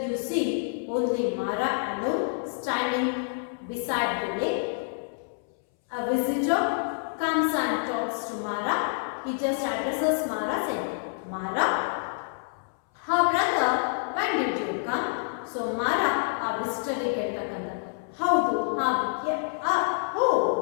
see only Mara alone standing beside the lake. A visitor comes and talks to Mara. He just addresses Mara saying, Mara, her brother, when did you come? So Mara, a visitor ಹೇಳ್ತಕ್ಕಂಥ ಹೌದು oh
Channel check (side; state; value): right; silent; 60 dB below the other